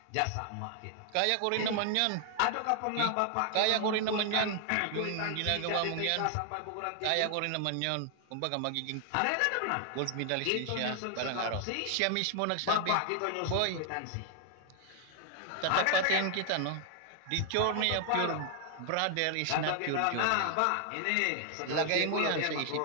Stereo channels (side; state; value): both; different; correlation 0.00